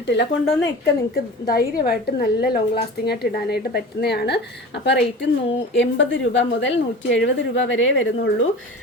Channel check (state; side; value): normal; both; correlation 0.35